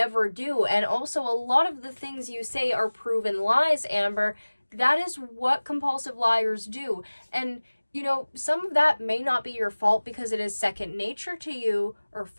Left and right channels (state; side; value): inverted; both; correlation -1.00